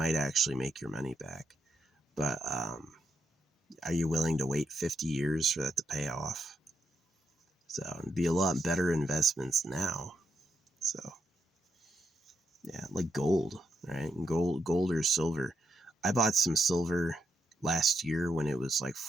actually make your money back. But are you willing to wait 50 years for that to pay off? So it'd be a lot better investments now. So yeah, like gold, right? Gold or silver. I bought some silver last year when it was like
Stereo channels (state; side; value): normal; both; correlation 0.80